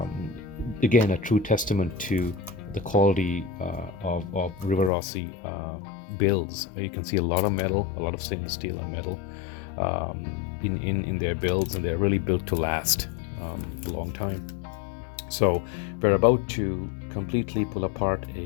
Again, a true testament to the quality of Rivarossi builds. You can see a lot of metal, a lot of stainless steel and metal in their builds, and they're really built to last a long time. So we're about to completely pull apart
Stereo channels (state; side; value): drops out; right; at 4.9 s